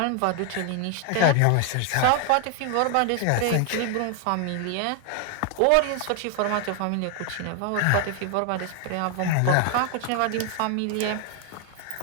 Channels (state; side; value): different; both; correlation 0.00